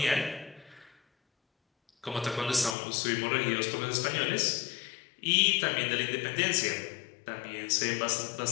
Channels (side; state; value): right; drops out; at 2.8 s